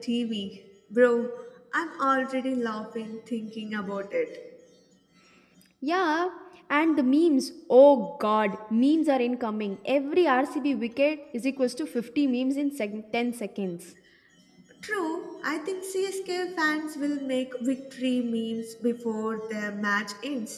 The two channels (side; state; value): both; identical; correlation 1.00